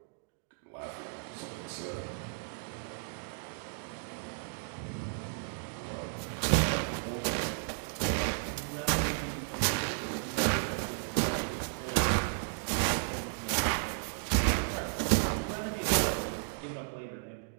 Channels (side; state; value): left; silent; digital silence